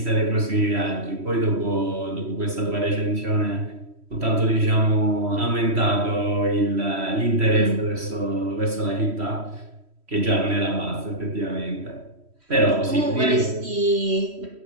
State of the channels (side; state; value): left; late; 3.1 ms